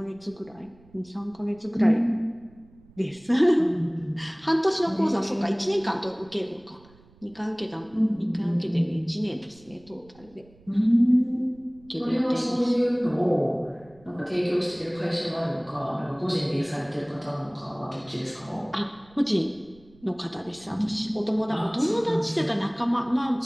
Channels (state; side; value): noise; right; rumble, 27 dB below the sound